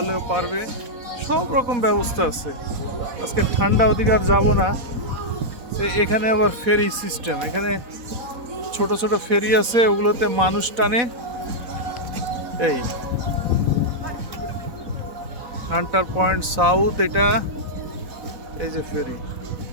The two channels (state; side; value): late; left; 4.1 ms